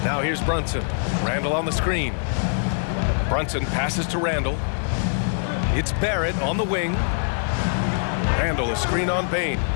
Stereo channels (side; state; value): right; silent; 63 dB below the other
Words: Now here's Brunson. Randall on the screen. Brunson passes to Randall. It's Barrett on the wing. Randall a screen on Bain.